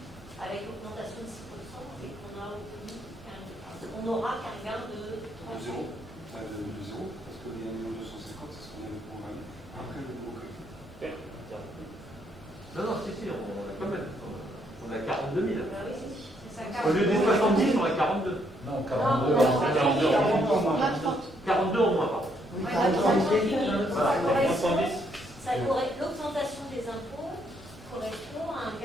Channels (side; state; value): both; normal; correlation 0.72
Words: avec l'augmentation de 6% et qu'on n'aura qu'un gain de 30 De zéro. De zéro, parce que les 1 250 c'est ce qu'on avait programmé. Après le nouveau calcul. Non, si, on a quand même. On a 42 000. Bah oui, c'est ça. Au lieu des 70, on a 42. Non, 42. 42. 42 en moins, pardon. Oui, Ouais, par exemple, ça correspond, l'augmentation des impôts correspond à un